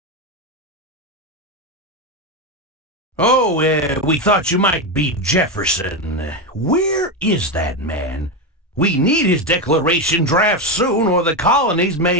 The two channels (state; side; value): normal; both; correlation 0.12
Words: Oh, we thought you might be Jefferson. Where is that man? We need his declaration draft soon, or the colonies